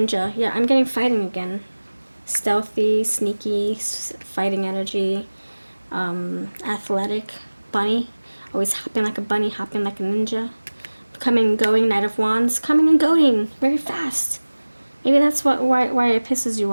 Yeah, I'm getting fighting again. Stealthy, sneaky, fighting energy. Athletic. Bunny. Always hopping like a bunny, hopping like a ninja. Coming and going, Knight of Wands. Coming and going. Very fast. Maybe that's why it pisses you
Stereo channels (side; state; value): both; inverted; correlation -1.00